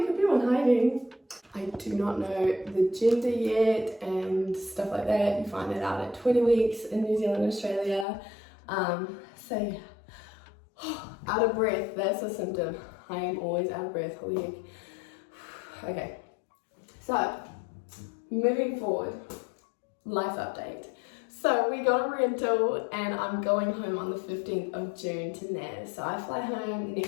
could be one hiding. I do not know the gender yet and stuff like that. You find that out at 20 weeks in New Zealand and Australia. So yeah, out of breath, that's a symptom. I am always out of breath, holy heck. Okay, so moving forward, life update. So we got a rental and I'm going home on the 15th of June to Naz. So I fly home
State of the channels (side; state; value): right; drops out; at 8.1 s